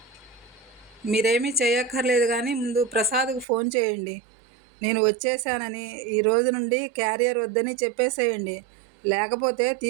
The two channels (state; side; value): drops out; left; at 3.5 s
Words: మీరేమీ చేయక్కర్లేదు కానీ ముందు ప్రసాద్కు ఫోన్ చేయండి. నేను వచ్చేసానని, ఈ రోజు నుండి క్యారియర్ వద్దని చెప్పేసేయండి. లేకపోతే